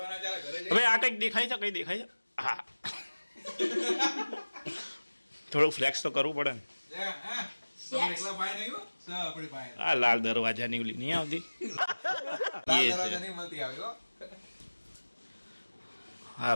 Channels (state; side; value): inverted; both; correlation -1.00